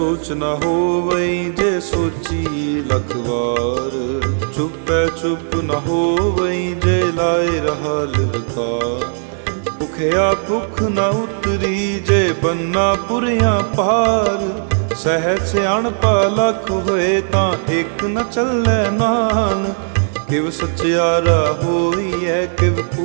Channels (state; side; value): silent; left; digital silence